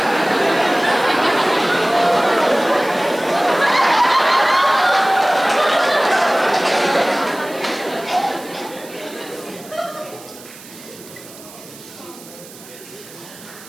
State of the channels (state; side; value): noise; right; hiss, 19 dB below the sound